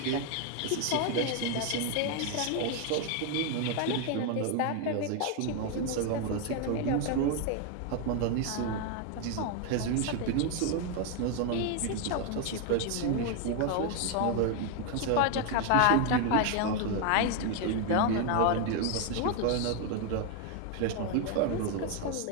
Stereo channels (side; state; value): both; different; correlation 0.01